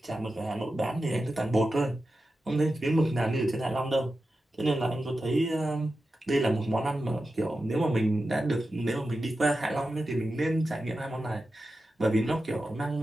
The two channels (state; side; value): normal; both; correlation 0.92